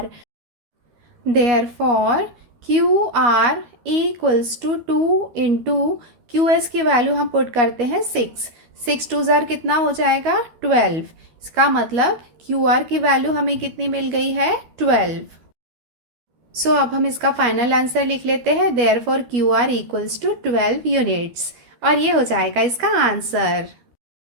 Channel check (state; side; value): late; left; 12 ms